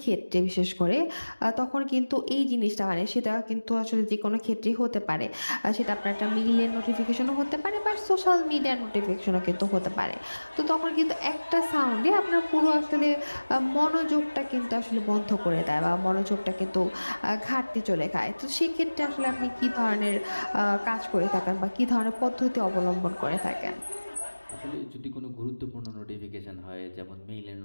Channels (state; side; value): inverted; both; correlation -1.00